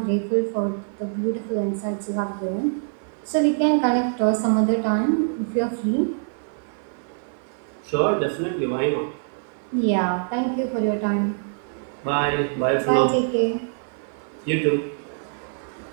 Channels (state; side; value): silent; left; 56 dB below the other